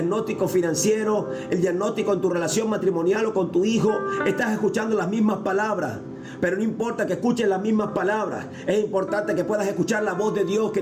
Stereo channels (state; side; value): identical; both; correlation 1.00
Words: financiero, el diagnóstico en tu relación matrimonial o con tu hijo, estás escuchando las mismas palabras. Pero no importa que escuches las mismas palabras, es importante que puedas escuchar la voz de Dios